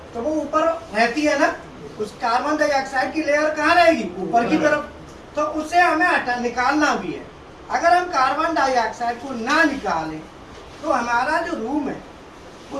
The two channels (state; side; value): identical; both; correlation 1.00